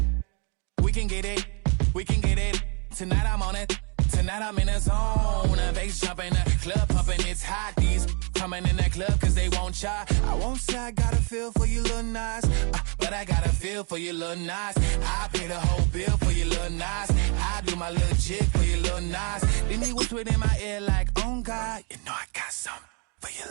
We can get it. Tonight I'm on it. Tonight I'm in a zone. A bass jumping, a club pumping, it's hot. These coming in that club cause they won't try. I won't say I got a feel for you little nice, but I got a feel for you little nice. I pay the whole bill for you little nice. I do my little jig for you little nice. Then he whispered in my ear like, oh God, you know I got something for you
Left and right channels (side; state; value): left; quieter; 35.7 dB